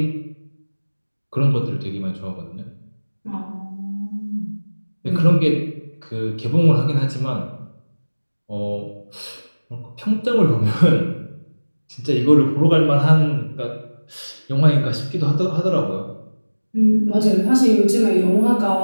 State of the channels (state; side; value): inverted; both; correlation -1.00